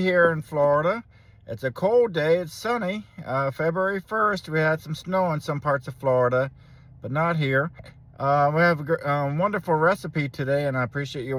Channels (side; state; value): both; identical; correlation 1.00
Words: here in Florida. It's a cold day, it's sunny. February 1st, we had some snow in some parts of Florida, but not here. We have a wonderful recipe today, and I appreciate you